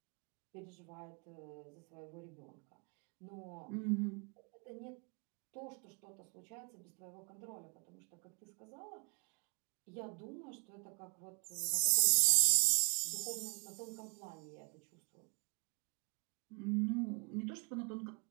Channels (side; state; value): left; quieter; 38.9 dB